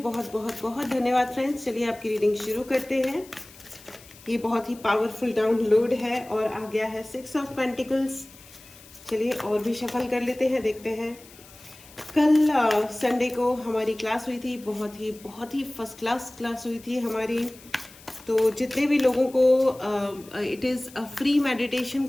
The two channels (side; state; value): left; noise; hiss, 22 dB below the sound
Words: बहुत बहुत धन्यवाद फ्रेंड्स। चलिए आपकी रीडिंग शुरू करते हैं। ये बहुत ही पावरफुल डाउनलोड है और आ गया है 6 ऑफ पेंटिकल्स। चलिए और भी शफल कर लेते हैं, देखते हैं। कल संडे को हमारी क्लास हुई थी, बहुत ही फर्स्ट क्लास हुई थी हमारी। तो जितने भी लोगों को it is a free meditation